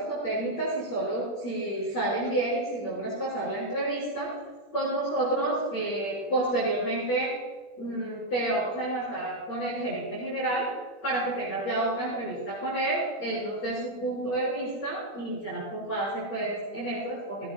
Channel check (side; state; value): right; late; 20 ms